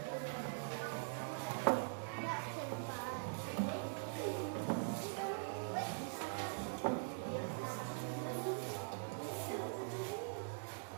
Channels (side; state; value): left; silent; digital silence